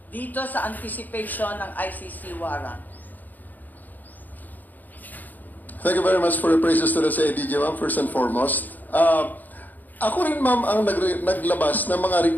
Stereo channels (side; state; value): right; late; 0.085 ms